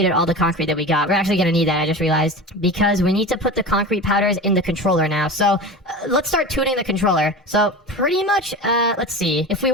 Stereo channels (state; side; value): normal; both; correlation 0.30